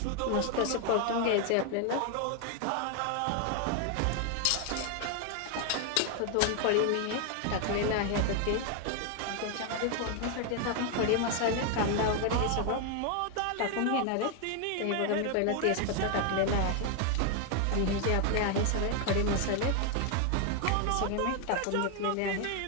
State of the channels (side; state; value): both; different; correlation 0.01